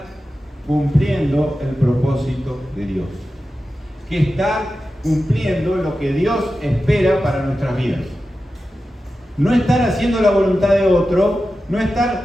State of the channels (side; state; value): both; normal; correlation 0.92